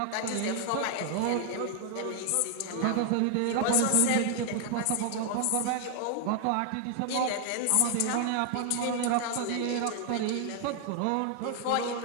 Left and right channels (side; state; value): both; different; correlation 0.00